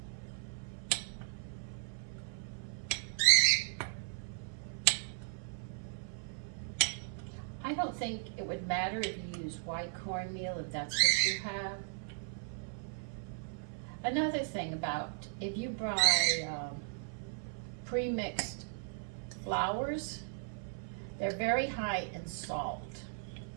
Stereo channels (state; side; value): silent; left; 53 dB below the other